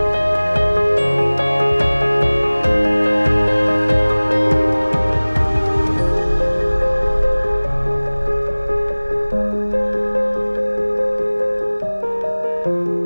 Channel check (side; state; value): both; inverted; correlation -1.00